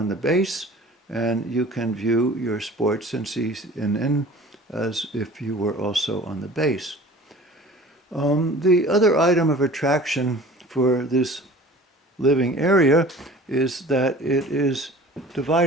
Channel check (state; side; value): normal; both; correlation 0.44